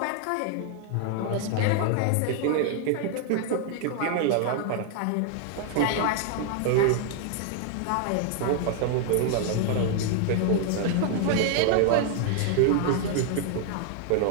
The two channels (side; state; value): both; different; correlation 0.00